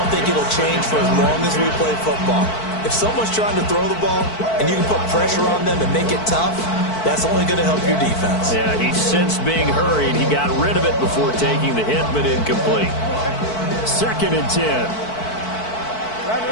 think it'll change for as long as we play football. If someone's trying to throw the ball and you can put pressure on them and make it tough, that's only going to help your defense. Yeah, he sensed being hurried. He got rid of it before taking the hit, but incomplete. 2nd and 10.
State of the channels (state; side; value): late; right; 4.5 ms